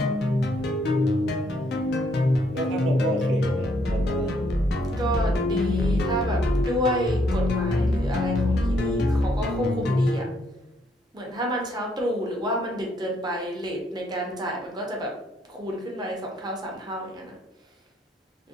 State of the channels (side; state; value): both; normal; correlation 0.70